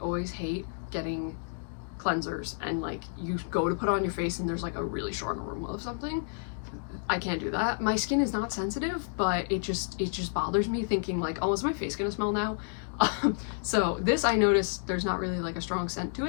always hate getting cleansers and like you go to put it on your face and there's like a really strong aroma of something. I can't do that. My skin is not sensitive, but it just bothers me thinking like, oh, is my face gonna smell now? So this, I noticed there's not really like a strong scent to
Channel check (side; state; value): right; silent; digital silence